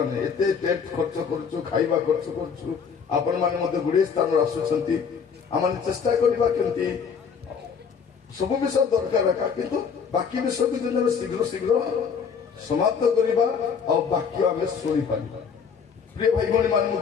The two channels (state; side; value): quieter; right; 6.3 dB